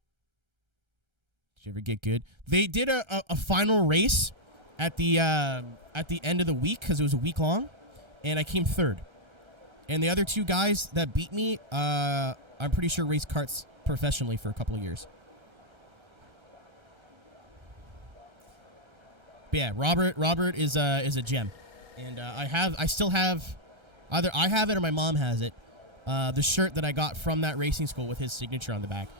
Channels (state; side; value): late; left; 1.3 ms